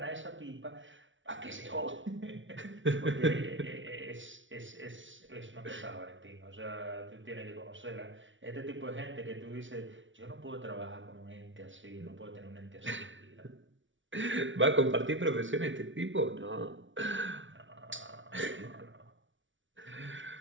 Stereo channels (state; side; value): late; left; 0.56 ms